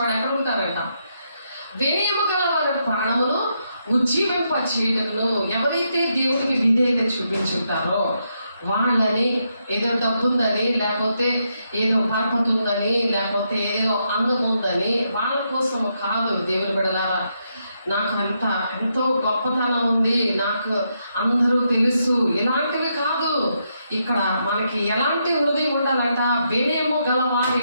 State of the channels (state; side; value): inverted; both; correlation -0.80